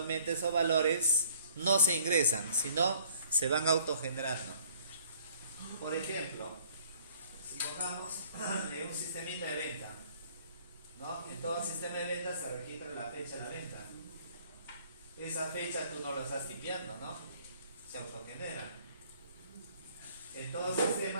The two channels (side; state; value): both; inverted; correlation -0.57